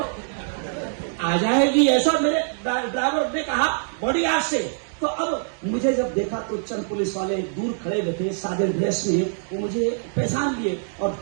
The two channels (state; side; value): silent; left; digital silence